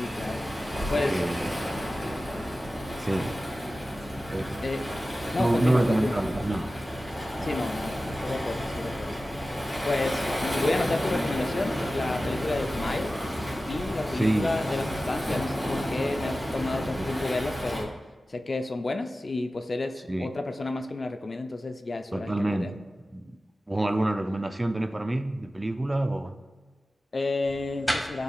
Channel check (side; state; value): both; normal; correlation 0.95